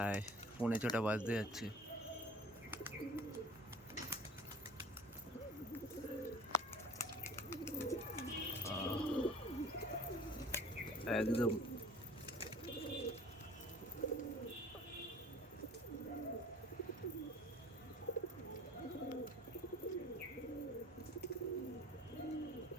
6:45 বাজতে যাচ্ছে। একদম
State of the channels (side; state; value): both; normal; correlation 0.46